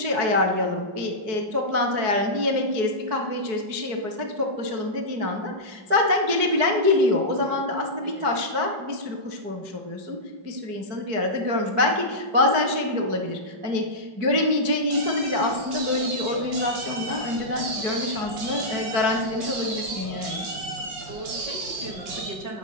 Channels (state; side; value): late; left; 4.6 ms